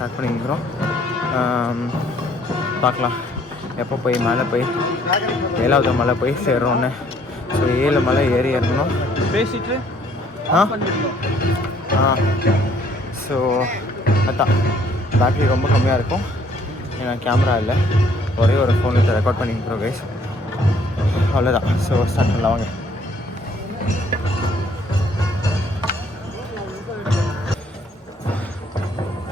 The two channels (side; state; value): both; normal; correlation 0.63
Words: பண்ணிக்கிறோம். பார்க்கலாம் எப்போ போய் மேலே போய் 7வது மலை போய் சேர்றோன்னு. ஸோ 7 மலை ஏறி இறங்கணும். பேசிட்டு ஸோ அதான் பேட்ரி ரொம்ப கம்மியாக இருக்கும். ஏன்னா கேமரா இல்லை, ஒரே ஒரு ஃபோனில் ரெக்கார்ட் பண்ணிக்கிறோம் கைஸ். அவ்வளோதான். ஸோ ஸ்டார்ட் பண்ணலாம் வாங்க.